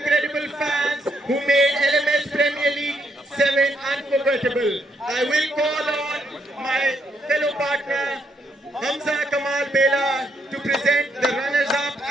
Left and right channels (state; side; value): normal; both; correlation 0.75